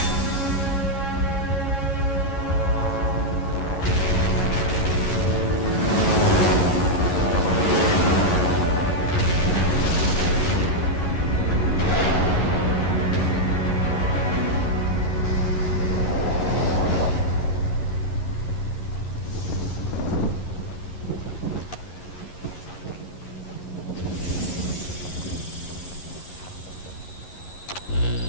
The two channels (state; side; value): late; right; 11 ms